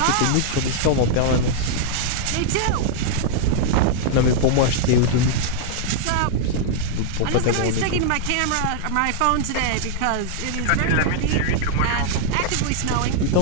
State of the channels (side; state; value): both; different; correlation -0.01